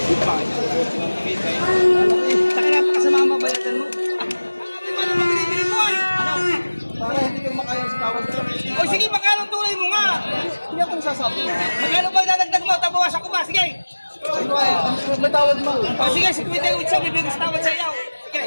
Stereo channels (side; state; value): both; inverted; correlation -1.00